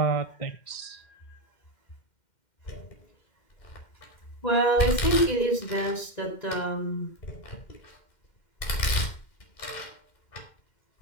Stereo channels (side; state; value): right; late; 2.1 ms